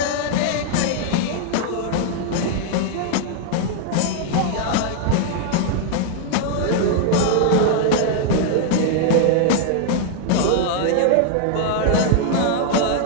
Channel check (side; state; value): both; different; correlation 0.00